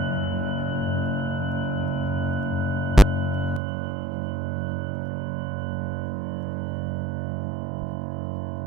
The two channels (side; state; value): left; drops out; at 3.6 s